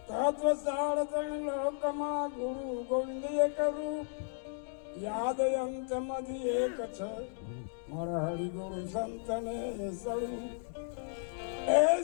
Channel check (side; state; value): right; silent; digital silence